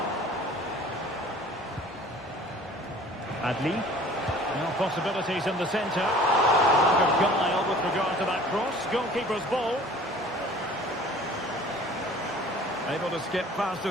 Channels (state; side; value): normal; both; correlation 0.48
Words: Adli. Now possibilities in the centre. Lack of guile with regard to that cross. Goalkeeper's ball. Able to skip past